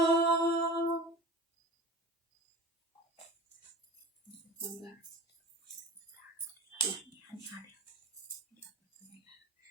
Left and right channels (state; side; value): normal; both; correlation 0.37